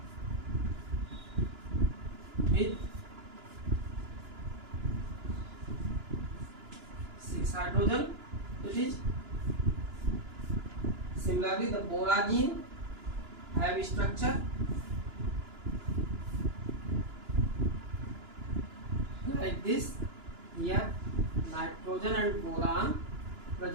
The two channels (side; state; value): left; late; 2.9 ms